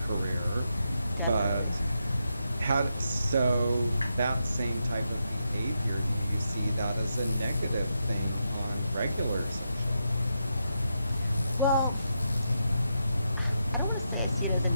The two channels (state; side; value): inverted; both; correlation -0.84